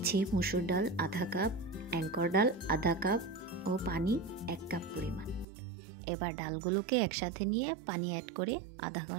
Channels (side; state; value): left; drops out; at 5.5 s